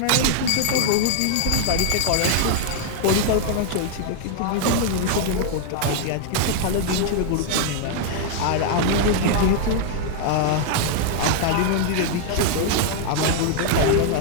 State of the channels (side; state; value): both; different; correlation 0.00